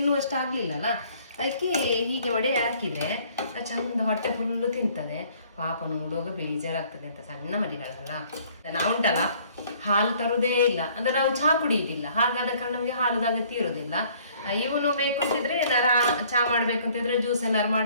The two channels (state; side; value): inverted; both; correlation -0.58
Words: ಆಗ್ಲಿಲ್ಲಲ್ಲ, ಅದಕ್ಕೆ ಹೀಗೆ ಮಾಡಿ ಹಾಕಿದ್ರೆ ಚಂದ ಹೊಟ್ಟೆ ಫುಲ್ಲು ತಿಂತದೆ. ಪಾಪ ನೋಡುವಾಗ ಬೇಜಾರಾಗ್ತದೆ ಅಂತ, ಸಣ್ಣ ಮರಿಗಳಲ್ಲ. ನಾವುಂಟಲ್ಲ ಹಾಲು ತರುವುದೇ ಇಲ್ಲ ಅಂದ್ರೆ ನಾವು ಚಹಾ ಕುಡಿಯುವುದಿಲ್ಲ, ಹಾಗಾದ ಕಾರಣ ನಮಗೆ ಹಾಲುದ ಅಗತ್ಯ ಇರುವುದಿಲ್ಲ. ಇವನು ಬೇಕು ಅಂತಿದ್ರೆ ಏನಾರ ಚಹಾ ಮಾಡ್ಬೇಕು ಅಂತಿದ್ರೆ, ಜ್ಯೂಸ್ ಏನಾರು